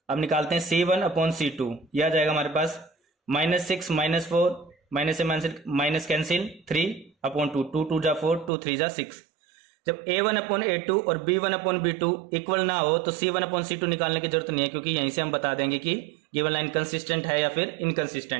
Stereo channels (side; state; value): left; drops out; at 8.5 s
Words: अब निकालते हैं c1 अपॉन c2, यह आ जाएगा हमारे पास -6 -4 माइनस से माइनस कैंसिल 3 अपॉन 2, 2 2 जा 4, 2 3 जा 6। जब a1 अपॉन a2 और b1 अपॉन b2 इक्वल ना हो तो c1 अपॉन c2 निकालने की जरूरत नहीं है, क्योंकि यहीं से हम बता देंगे कि गिवन लाइन कंसिस्टेंट है या फिर